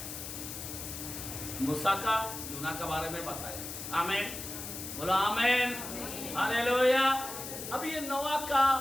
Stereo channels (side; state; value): left; noise; hiss, 8 dB below the sound